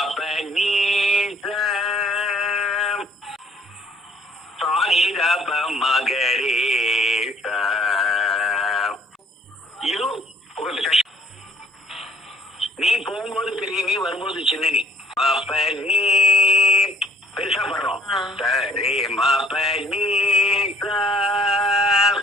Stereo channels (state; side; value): normal; both; correlation 0.59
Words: நீ சாரி தப மகரே இது கொஞ்சம் கஷ்டம். நீ போகும்போது பெரிய நீ வரும்போது சின்ன நீ. பாப்ப நீ பெருசா படுறோம். சரி மாப்ப நீ